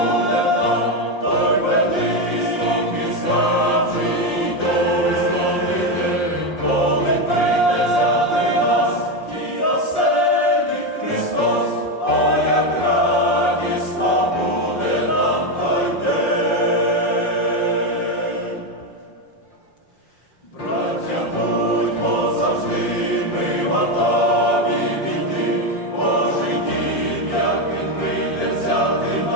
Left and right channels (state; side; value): late; right; 5.6 ms